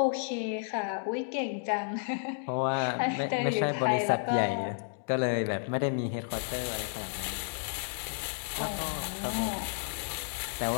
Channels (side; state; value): right; silent; digital silence